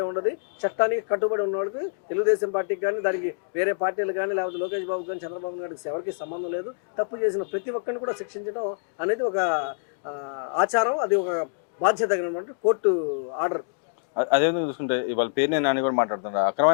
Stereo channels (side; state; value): right; silent; digital silence